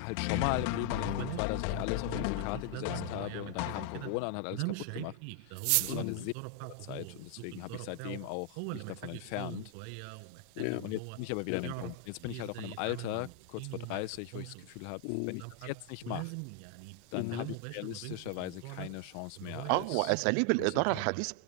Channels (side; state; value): both; different; correlation 0.00